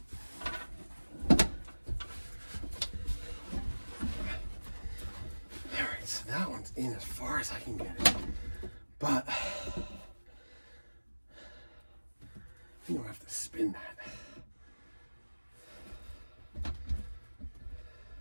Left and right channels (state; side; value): inverted; both; correlation -1.00